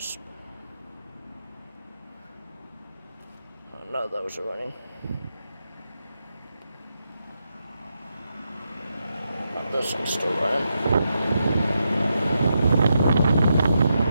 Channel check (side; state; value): both; inverted; correlation -0.85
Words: I know those are running. And this one's still running.